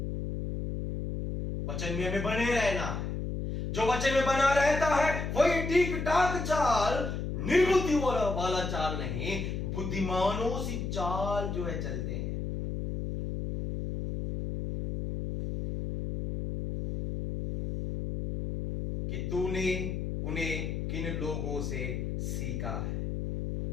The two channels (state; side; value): noise; left; hum, 3 dB below the sound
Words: वचन में हमें बने रहना है। जो वचन में बना रहता है वही ठीक ठाक चाल, निर्बुद्धि वाला चाल नहीं, बुद्धिमानों सी चाल जो है चलते हैं। कि तूने उन्हें किन लोगों से सीखा है।